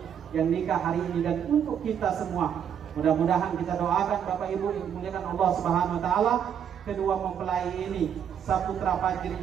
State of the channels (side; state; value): left; quieter; 8.5 dB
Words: yang nikah hari ini dan untuk kita semua. Mudah-mudahan kita doakan Bapak Ibu yang dimuliakan Allah Subhanahu wa taala, kedua mempelai ini Saputra Fajri